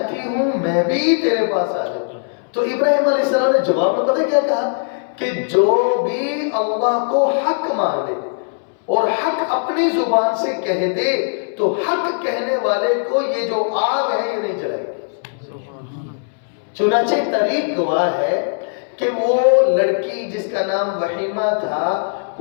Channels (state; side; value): silent; right; 64 dB below the other